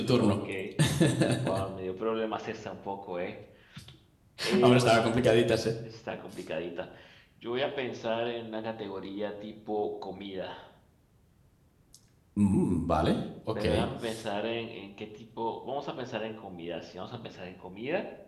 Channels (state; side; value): identical; both; correlation 1.00